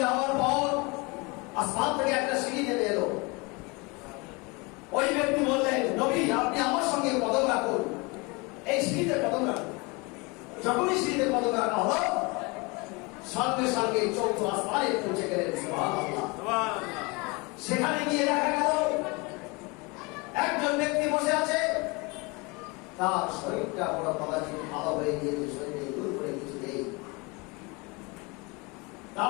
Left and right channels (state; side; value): quieter; right; 27.4 dB